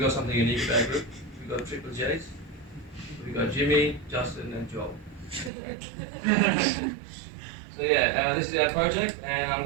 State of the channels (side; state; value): left; drops out; at 5.5 s